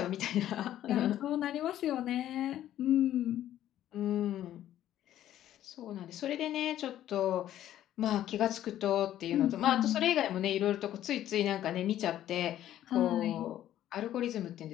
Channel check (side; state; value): right; quieter; 12.2 dB